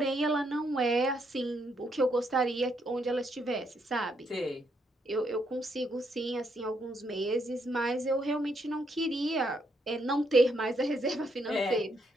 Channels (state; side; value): normal; both; correlation 0.75